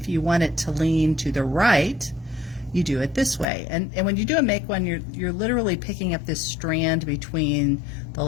you want it to lean to the right, you do it this way. And when you do a make one, you're literally picking up this strand between the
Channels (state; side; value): drops out; right; at 3.5 s